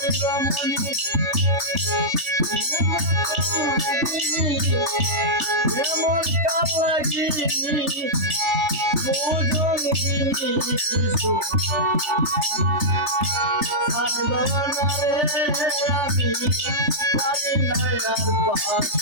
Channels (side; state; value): left; late; 3.4 ms